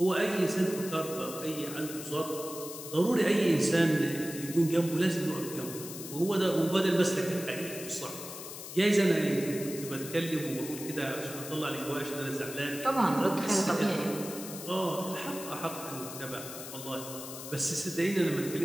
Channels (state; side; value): noise; left; hiss, 10 dB below the sound